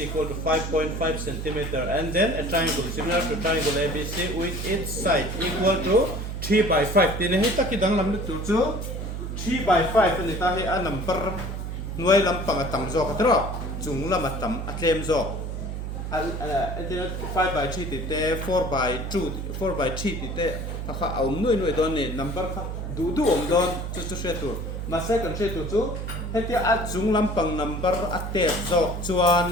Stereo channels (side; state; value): right; noise; hum, 5 dB below the sound